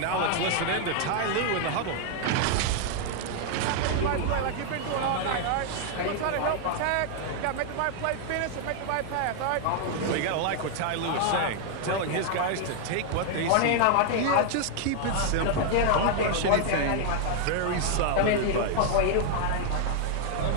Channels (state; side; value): different; both; correlation 0.00